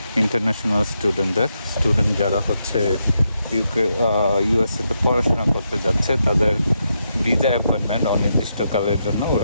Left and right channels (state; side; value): inverted; both; correlation -0.82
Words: ইন্টারন্যাশনাল স্টুডেন্ট যারা হচ্ছে ইউএসএতে পড়াশোনা করতে যাচ্ছে তাদের ভিসা অ্যাপয়েন্টমেন্ট অনির্দিষ্টকালের জন্য